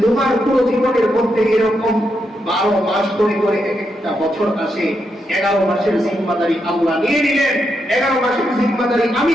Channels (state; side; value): normal; both; correlation 0.82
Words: তোমার পুরো জীবনের মধ্যে এরকম 12 মাস করে করে একটা বছর আসে, 11 মাসের জিম্মাদারি আল্লাহ নিয়ে নিলেন, 11 মাসের জিম্মাদারি আমি